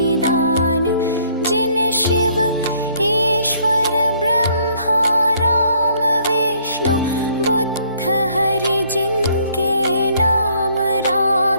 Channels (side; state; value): both; inverted; correlation -0.64